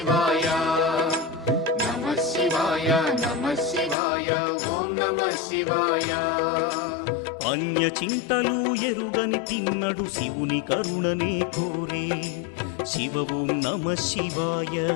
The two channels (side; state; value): right; drops out; at 4.0 s